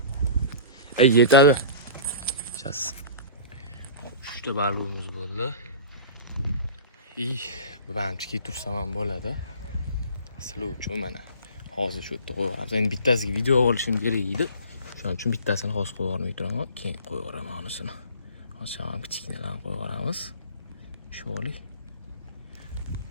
Yetadi. Chas. 3 ta balig'imiz bo'ldi. Bu hamchiki tursam ham bo'ladi. Sizlar uchun mana hozir shu yerda qo'yib yuboramiz. Endi bittasiga video olishim kerak edi. Shuning uchun bittasini hozir qo'yib yubormay turaman, keyin qo'yib yuboraman unisini. Hozir ham kichkinalarni qo'yib yuboramiz. Shu olay.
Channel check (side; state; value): both; inverted; correlation -0.41